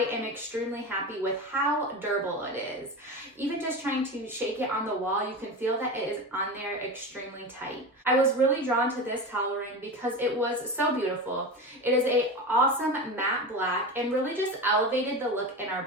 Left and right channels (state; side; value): normal; both; correlation 0.25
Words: am extremely happy with how durable it is. Even just trying to shake it on the wall, you can feel that it is on there extremely tight. I was really drawn to this towel ring because it was so beautiful. It is an awesome matte black and really just elevated the look in our